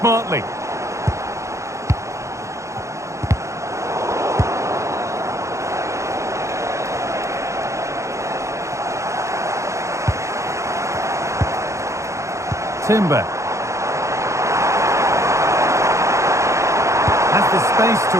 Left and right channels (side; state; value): left; late; 0.14 ms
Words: Timber. Has the space to